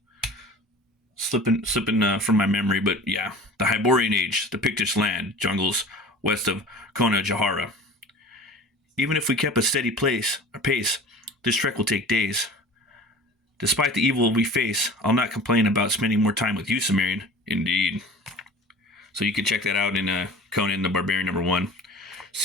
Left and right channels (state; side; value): normal; both; correlation 0.40